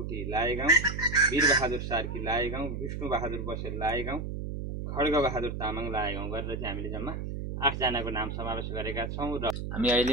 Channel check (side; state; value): right; noise; hum, 5 dB below the sound